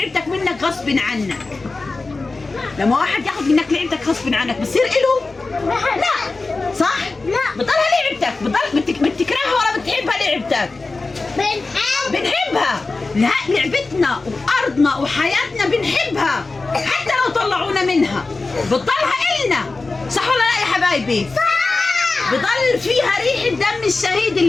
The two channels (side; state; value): right; quieter; 3.6 dB